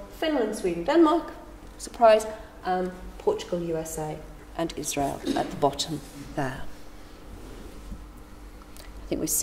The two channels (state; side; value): identical; both; correlation 1.00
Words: Finland, Sweden, Denmark, surprise, Portugal, USA, and Israel at the bottom there. I think we've